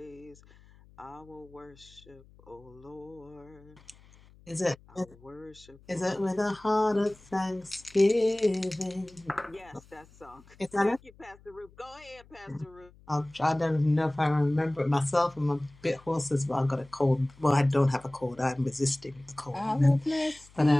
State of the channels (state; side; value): noise; left; hum, 25 dB below the sound